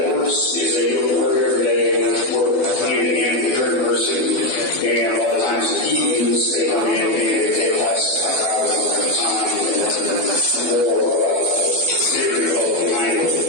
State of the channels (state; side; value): late; right; 12 ms